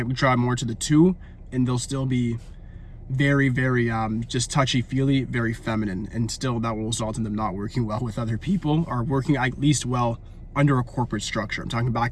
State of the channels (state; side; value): identical; both; correlation 1.00